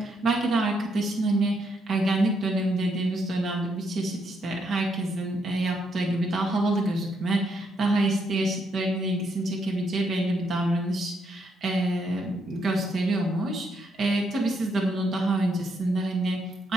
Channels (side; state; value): both; normal; correlation 0.76